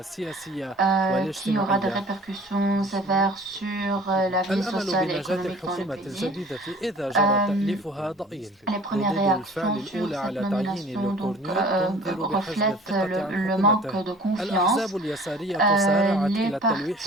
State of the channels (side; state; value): both; normal; correlation 0.48